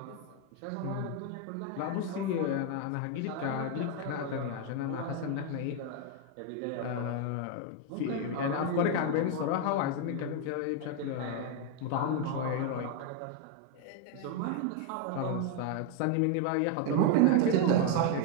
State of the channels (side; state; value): both; different; correlation 0.01